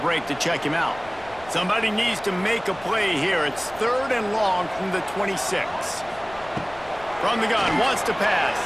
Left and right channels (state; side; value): noise; left; rumble, 21 dB below the sound